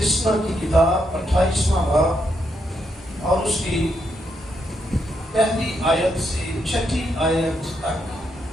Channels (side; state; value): both; normal; correlation 0.79